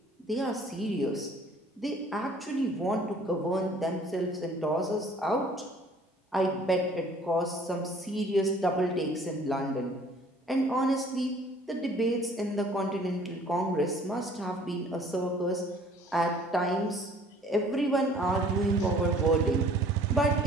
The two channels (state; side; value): normal; both; correlation 0.54